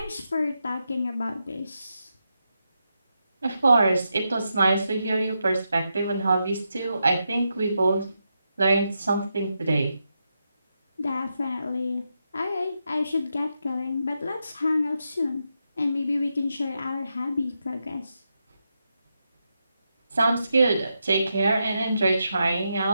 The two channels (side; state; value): both; inverted; correlation -0.85